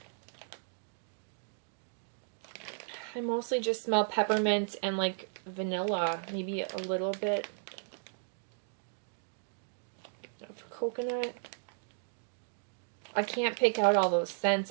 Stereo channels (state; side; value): silent; left; digital silence